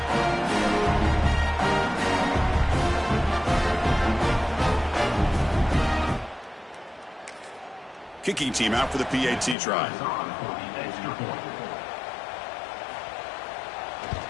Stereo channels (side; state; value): right; drops out; at 9.6 s